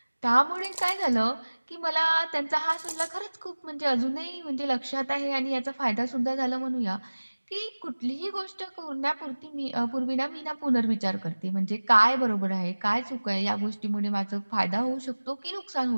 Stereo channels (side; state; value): both; inverted; correlation -1.00